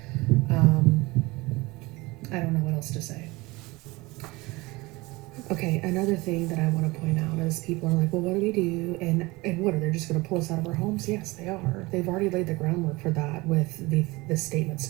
I don't know what else to say. Okay, another thing that I want to point out is people are like, well, what do we do? And what, are they just going to pull us out of our homes? Yes, they are. They've already laid the groundwork for that with the statement.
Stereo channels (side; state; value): left; quieter; 22.6 dB